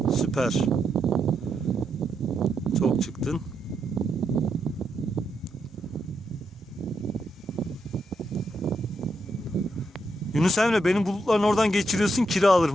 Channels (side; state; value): both; normal; correlation 0.81